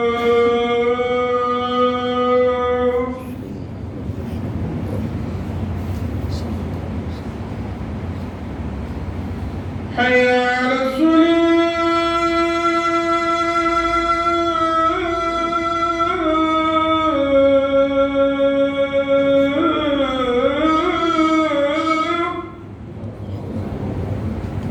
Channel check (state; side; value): identical; both; correlation 1.00